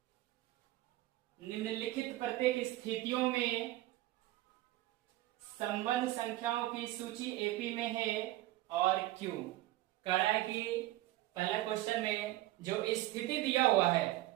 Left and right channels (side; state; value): left; quieter; 16.6 dB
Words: निम्नलिखित प्रत्येक स्थितियों में संबंध संख्याओं की सूची एपी में है और क्यों। कह रहा है कि पहला क्वेश्चन में जो स्थिति दिया हुआ है